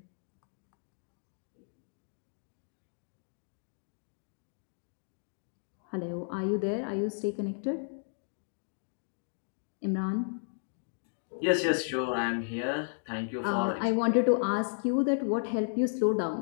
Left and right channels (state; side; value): silent; right; digital silence